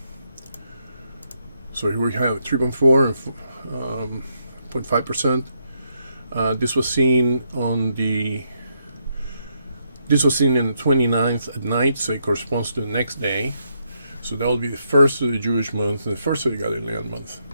So here we have 3.4 and 0.5%. This was seen in the 29th at night, so it corresponds to the next day. So that will be the first of the Jewish month and the first of the Galilean month.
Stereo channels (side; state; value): both; inverted; correlation -0.78